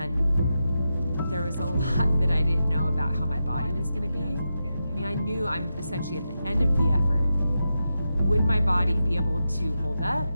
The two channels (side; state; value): both; inverted; correlation -0.88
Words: there was a lot that I didn't know about how my body was gonna be. I mean, I knew I'm essentially at the end of the effort. Would my body be able to hold up?